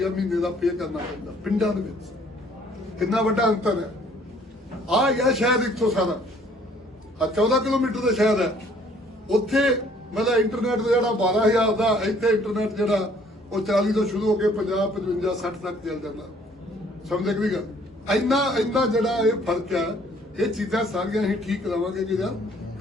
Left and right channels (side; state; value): both; normal; correlation 0.59